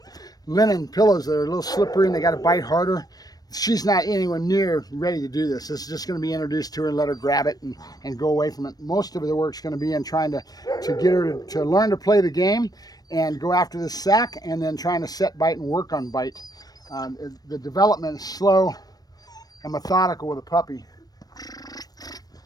linen pillows that are a little slippery and they got to bite harder. She's not anywhere near ready to do this. This is just going to be introduced to her and let her grab it and go away from it. Most of the work's going to be in trying to get her to learn to play the game and go after this sack, and then trying to set bite and work on bite. The development is slow and methodical with a puppy.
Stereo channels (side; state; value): right; late; 0.19 ms